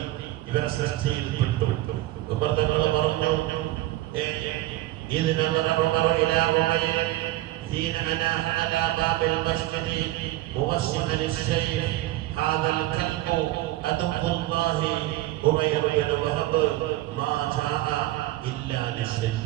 ഇവരെ സൃഷ്ടിയിൽ പെട്ടു. ഉമർ തങ്ങൾ പറഞ്ഞു, إذ نظر عمر إلى عمير حين أناح على باب المسجد موسما السيف هذا الكلب عدو الله عمير بن وهب ما جاء إلا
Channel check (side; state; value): left; quieter; 16.6 dB